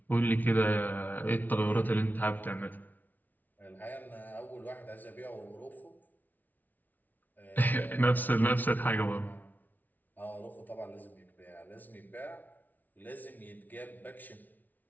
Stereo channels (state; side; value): late; right; 0.081 ms